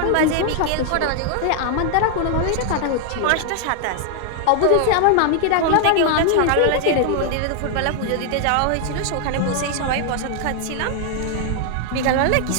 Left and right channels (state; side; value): different; both; correlation 0.00